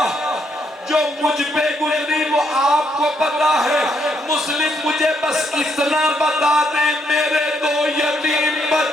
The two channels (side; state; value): both; normal; correlation 0.74